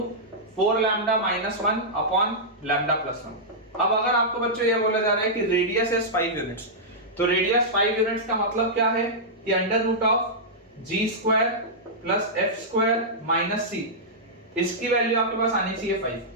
4 लैम्डा - 1 अपॉन लैम्डा + 1। अब अगर आपको बच्चों ये बोला जा रहा है कि रेडियस इज 5 यूनिट्स, तो रेडियस 5 यूनिट्स का मतलब क्या है कि √g² + f² - c, इसकी वैल्यू आपके पास आनी चाहिए 5।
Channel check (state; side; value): normal; both; correlation -0.11